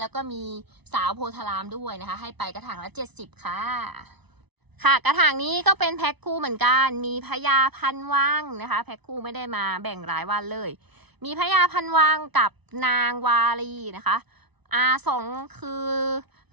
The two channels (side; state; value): left; late; 0.99 ms